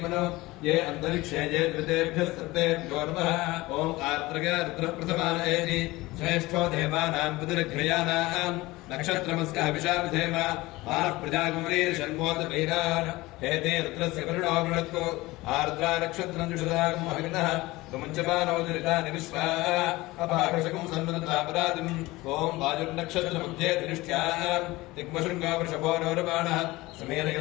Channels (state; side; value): quieter; right; 20.1 dB